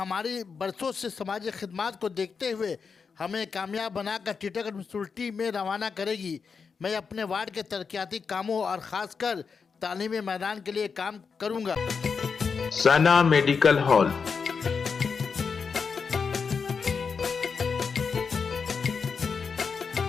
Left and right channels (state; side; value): quieter; right; 5.6 dB